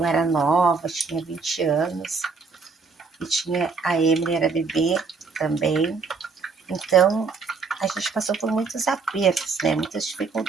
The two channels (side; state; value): left; quieter; 4.7 dB